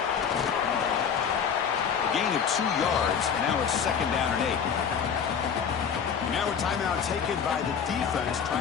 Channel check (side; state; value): right; quieter; 7.1 dB